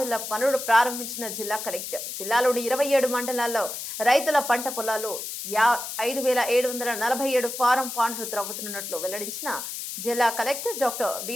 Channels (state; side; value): noise; left; hiss, 7 dB below the sound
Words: పనులు ప్రారంభించిన జిల్లా కలెక్టర్ జిల్లాలోని 27 మండలాల్లో రైతుల పంట పొలాలు 5747 ఫారం పాండ్లు త్రవ్వుతున్నట్లు వెల్లడించిన జిల్లా కలెక్టర్ డాక్టర్